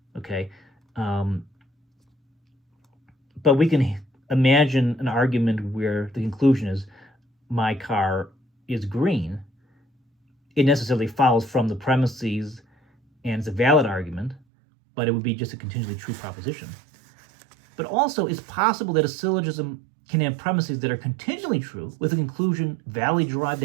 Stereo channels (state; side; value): drops out; left; at 14.4 s